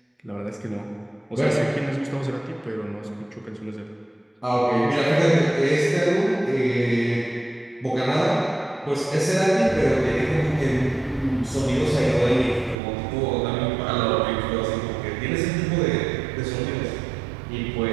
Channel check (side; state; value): left; drops out; at 12.8 s